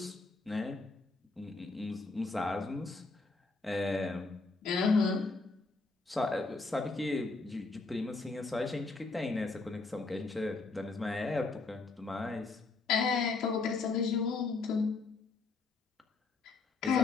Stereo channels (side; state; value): right; quieter; 3.8 dB